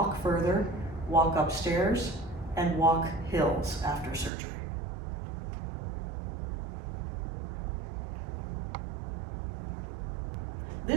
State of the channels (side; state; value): left; drops out; at 4.3 s